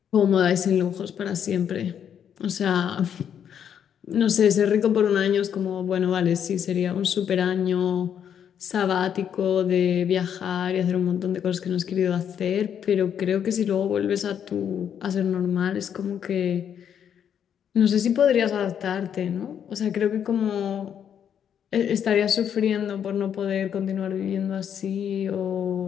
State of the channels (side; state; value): right; quieter; 8.6 dB